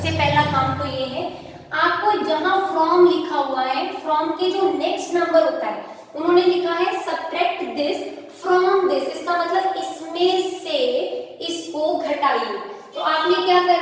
पहला काम तो ये है आपको जहां फ्रॉम लिखा हुआ है फ्रॉम के जो नेक्स्ट नंबर होता है उन्होंने लिखा है सब्ट्रैक्ट दिस फ्रॉम दिस, इसका मतलब इसमें से इसको घटाइए। तो आपने क्या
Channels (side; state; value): both; identical; correlation 1.00